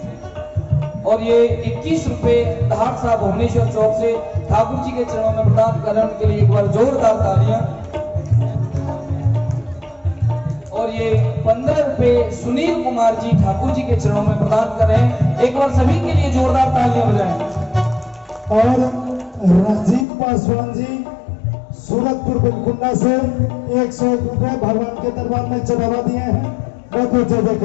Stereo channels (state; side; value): drops out; right; at 20.1 s